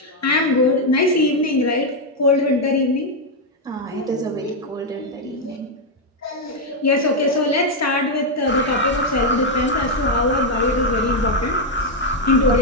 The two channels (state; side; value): normal; both; correlation 0.02